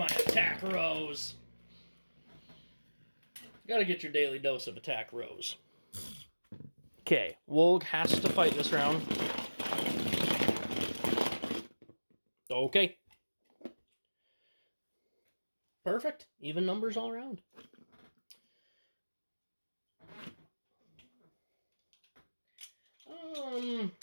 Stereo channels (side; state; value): both; inverted; correlation -1.00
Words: attack Rose. You gotta get your daily dose of attack Rose. Okay, Wolg has to fight this round. Okay. Perfect. Even numbers all around. I'm